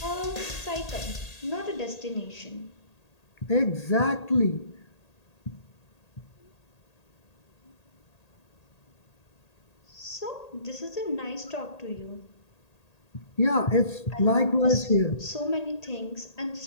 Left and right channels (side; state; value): right; late; 1.8 ms